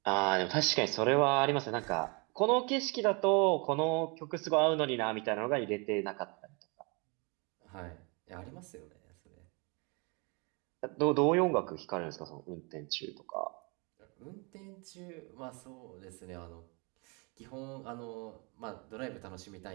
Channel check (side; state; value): left; quieter; 31.4 dB